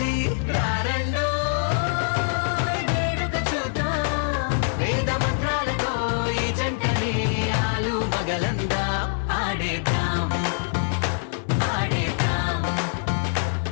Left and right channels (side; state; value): right; silent; digital silence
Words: రారండో వేడుక చూద్దాం వేద మంత్రాలతో ఈ జంటని ఆలు మగలందా ఆడేద్దాం ఆడేద్దాం